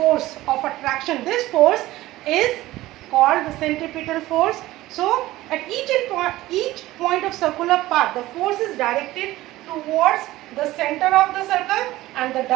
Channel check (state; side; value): quieter; left; 16.9 dB